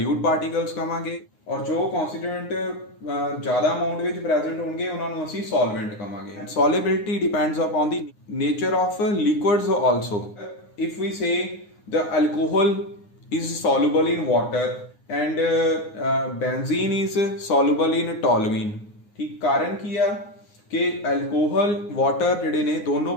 ਪਾਰਟੀਕਲਸ ਕਹਾਂਗੇ, ਔਰ ਜੋ ਕਨਸਟੀਟਿਊਐਂਟ ਜ਼ਿਆਦਾ ਅਮਾਉਂਟ ਵਿੱਚ ਪ੍ਰੈਜ਼ੈਂਟ ਹੋਣਗੇ ਉਹਨਾਂ ਨੂੰ ਅਸੀਂ ਸੋਲਵੈਂਟ ਕਹਾਂਗੇ। Solubility depends upon the nature of liquids also. If we say the alcohol is soluble in water and benzene is soluble in toluene। ਠੀਕ, ਕਾਰਨ ਕੀ ਆ ਕਿ ਐਲਕੋਹਲ ਵਾਟਰ ਜਿਹੜੇ ਨੇ ਦੋਨੋਂ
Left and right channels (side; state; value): right; late; 9.6 ms